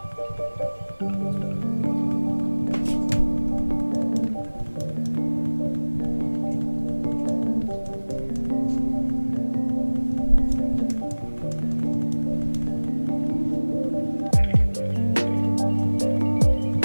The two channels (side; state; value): both; inverted; correlation -1.00